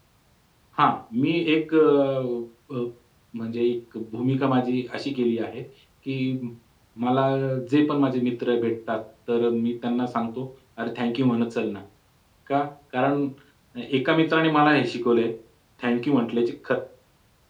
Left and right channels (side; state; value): both; identical; correlation 1.00